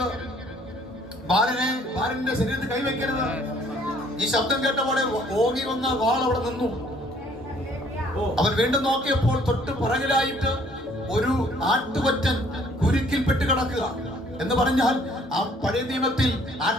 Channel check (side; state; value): both; normal; correlation 0.60